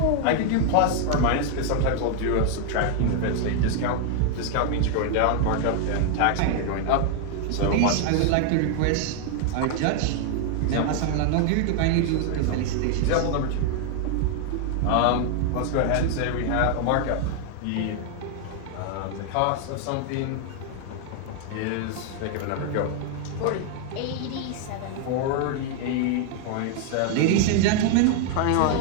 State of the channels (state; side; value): different; both; correlation 0.00